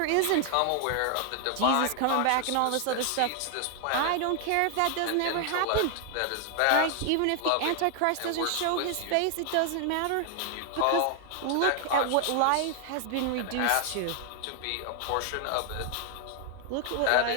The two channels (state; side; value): different; both; correlation 0.00